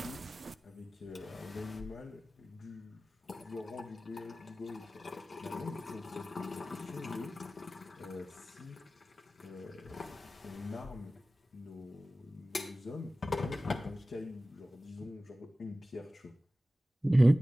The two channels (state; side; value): normal; both; correlation 0.96